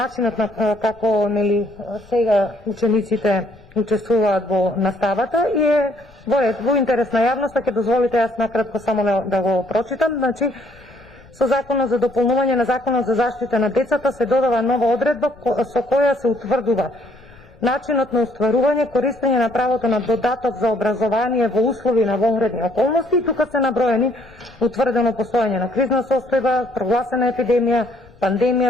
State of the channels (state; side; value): noise; left; rumble, 26 dB below the sound